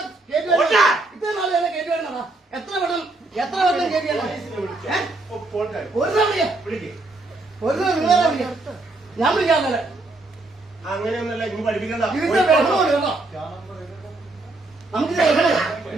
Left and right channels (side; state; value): left; quieter; 3.0 dB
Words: ഇത്ര നാൾ എന്നെ കയറ്റി വരണോ? എത്ര വട്ടം കയറ്റി ഞാൻ വിളിക്കാതെ അങ്ങനെയൊന്നല്ല. ഇനി പഠിപ്പിക്കണ്ട. നമുക്ക്